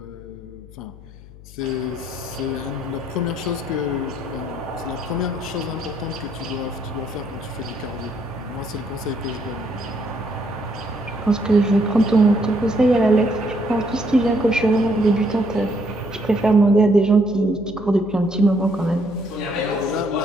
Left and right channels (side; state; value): left; noise; hum, 19 dB below the sound